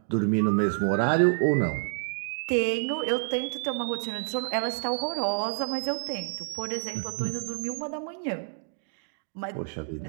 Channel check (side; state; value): left; silent; digital silence